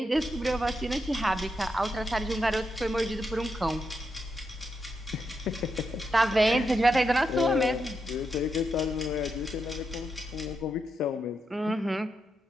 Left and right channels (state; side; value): normal; both; correlation 0.84